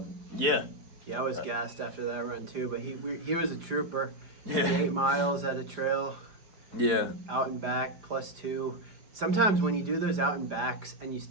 yeah. Yeah, I was gassed after that run too, but he was a trooper. He did 8 miles at a trail, Yeah. out and back, +2. Sometimes when you do those out and backs and you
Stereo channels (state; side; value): late; left; 5.0 ms